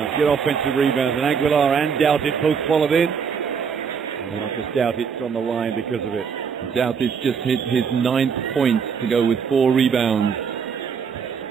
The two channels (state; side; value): quieter; left; 6.4 dB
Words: get offensive rebounds, and Aguilar and Douthit both followed in. And Marcus Douthit's on the line because of it. Douthit's just hit his 9th point to go with 4 rebounds.